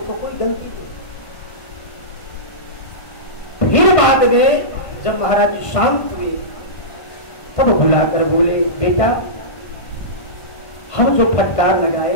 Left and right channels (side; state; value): right; late; 1.5 ms